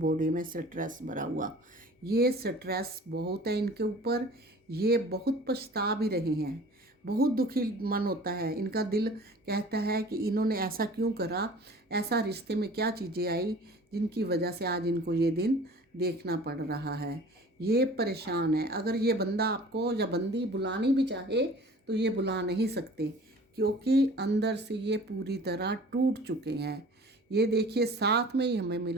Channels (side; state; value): both; normal; correlation 0.45